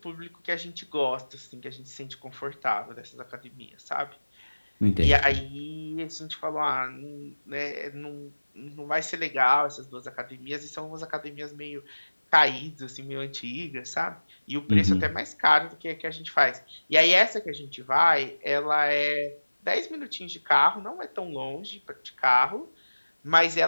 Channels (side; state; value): both; inverted; correlation -1.00